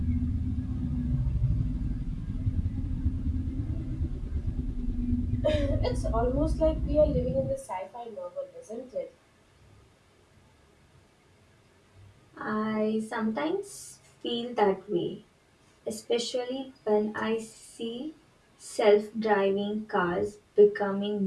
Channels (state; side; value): identical; both; correlation 1.00